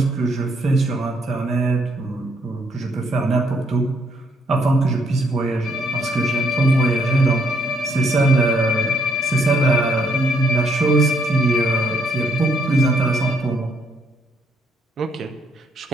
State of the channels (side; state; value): both; normal; correlation 0.71